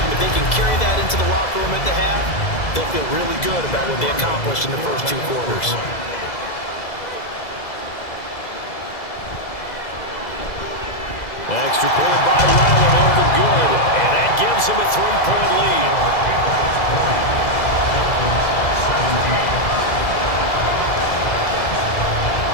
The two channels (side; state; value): right; late; 2.0 ms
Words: if they can carry that into the locker room at the half, they'll feel really good about what they accomplished in the first 2 quarters. Extra point by Ryland up and good. And that gives him a 3-point lead.